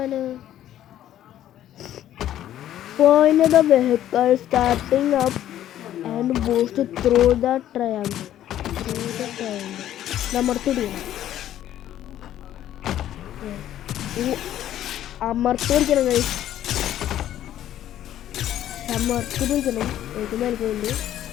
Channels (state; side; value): quieter; right; 12.0 dB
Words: Point the vehicle starting up and boost through the triangle. അമർത്തിടിക്കണം. അമർത്തി പിടിക്കണം ഗൈസ്. അമർത്തി പിടിക്കണം. ഏറ്റവും മേൽക്കുണ്ട്